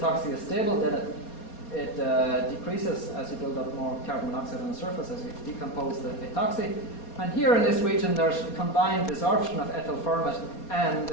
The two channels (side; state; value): right; late; 4.2 ms